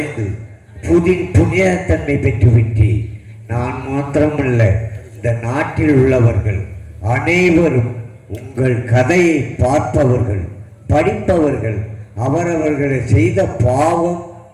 புனிதத்தன்மை பெற்றுவிட்டேன். நான் மாத்திரமல்ல, இந்த நாட்டில் உள்ளவர்கள் அனைவரும் உங்கள் கதையை பார்ப்பவர்கள், படிப்பவர்கள் அவரவர்களை செய்த பாவம்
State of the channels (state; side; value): identical; both; correlation 1.00